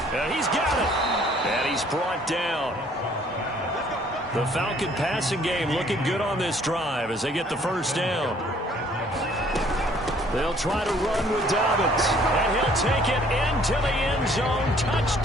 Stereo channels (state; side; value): normal; both; correlation 0.59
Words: He's got it. And he's brought down. The Falcon passing game looking good on this drive as they get the first down. They'll try to run with Dobbins. And he'll take it into the end zone.